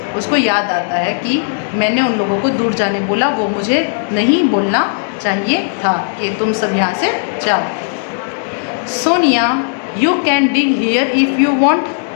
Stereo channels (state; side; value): silent; right; 68 dB below the other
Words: उसको याद आता है कि मैंने उन लोगों को दूर जाने बोला, वो मुझे नहीं बोलना चाहिए था कि तुम सब यहाँ से जाओ। Sonia you can dig here if you want.